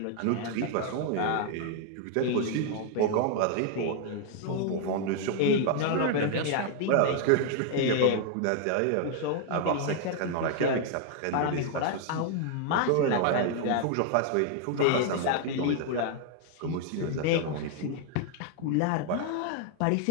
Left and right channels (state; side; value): different; both; correlation 0.00